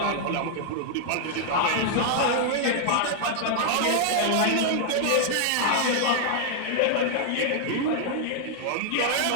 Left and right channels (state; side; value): different; both; correlation 0.00